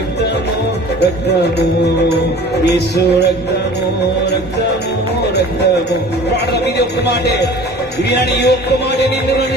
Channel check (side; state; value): right; noise; rumble, 25 dB below the sound